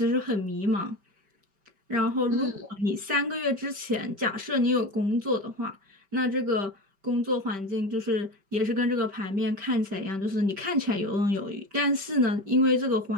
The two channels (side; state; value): left; late; 5.1 ms